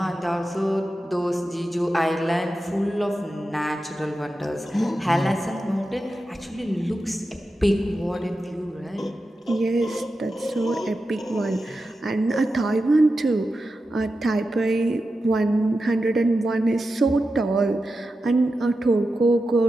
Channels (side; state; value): both; normal; correlation 0.91